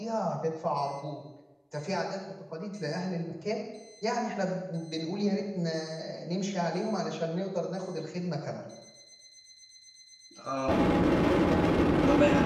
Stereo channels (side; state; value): both; identical; correlation 1.00